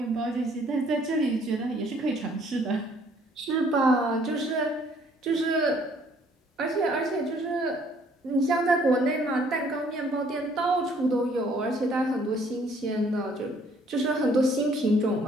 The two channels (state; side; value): normal; both; correlation 0.61